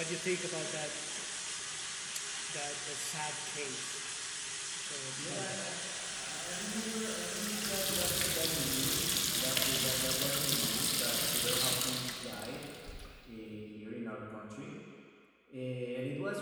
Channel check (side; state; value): both; identical; correlation 1.00